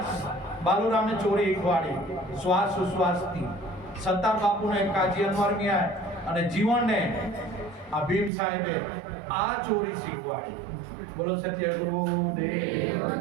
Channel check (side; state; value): left; drops out; at 8.3 s